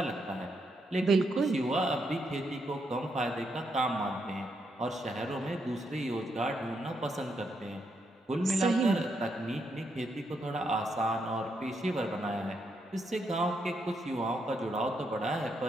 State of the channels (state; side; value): normal; both; correlation 0.79